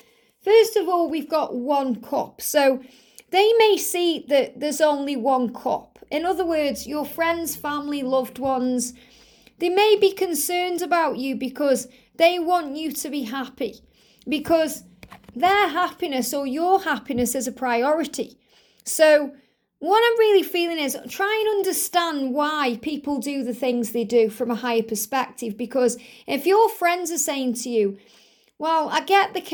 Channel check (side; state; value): both; identical; correlation 1.00